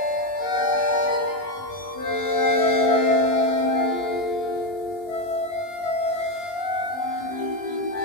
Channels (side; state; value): right; late; 20 ms